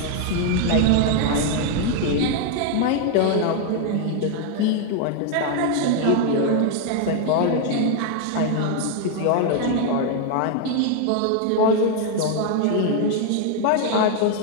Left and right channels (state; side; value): different; both; correlation 0.00